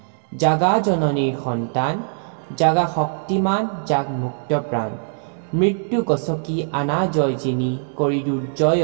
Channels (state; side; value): silent; left; 65 dB below the other